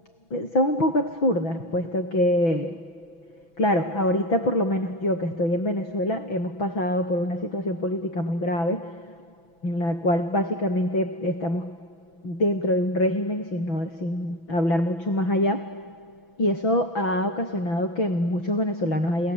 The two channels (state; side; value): late; right; 6.0 ms